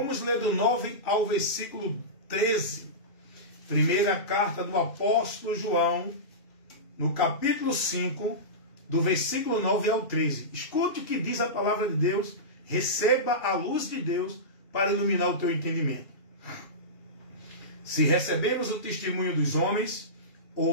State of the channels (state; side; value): late; right; 2.3 ms